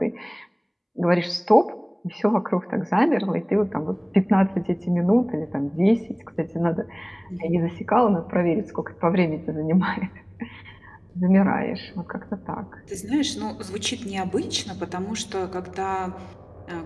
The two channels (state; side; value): identical; both; correlation 1.00